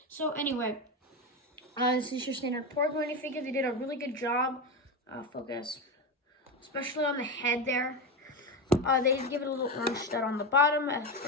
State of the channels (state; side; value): normal; both; correlation 0.16